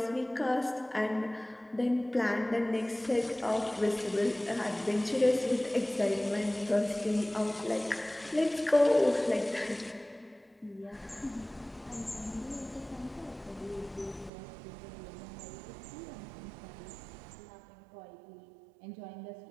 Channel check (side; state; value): left; drops out; at 14.3 s